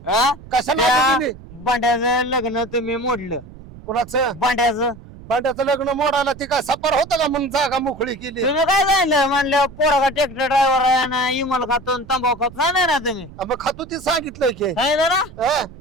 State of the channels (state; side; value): noise; right; rumble, 18 dB below the sound